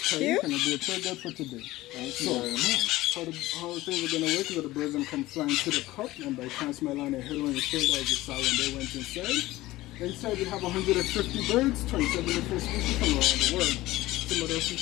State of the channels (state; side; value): quieter; right; 17.6 dB